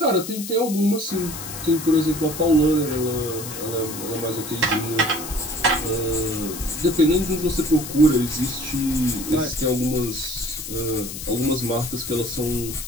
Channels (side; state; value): left; noise; hiss, 9 dB below the sound